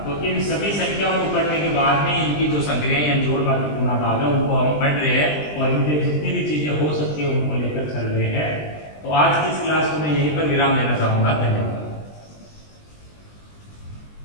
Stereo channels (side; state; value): right; late; 20 ms